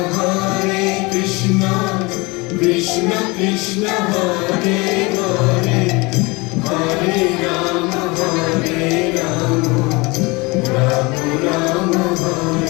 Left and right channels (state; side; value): quieter; right; 25.4 dB